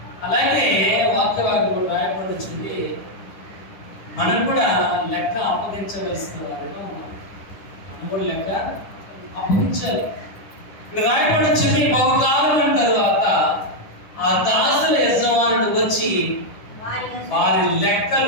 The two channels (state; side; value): late; right; 10 ms